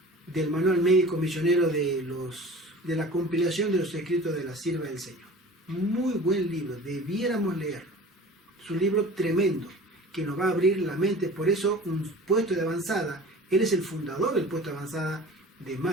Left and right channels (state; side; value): normal; both; correlation 0.41